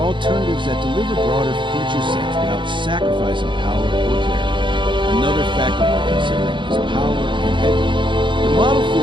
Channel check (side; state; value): left; late; 0.23 ms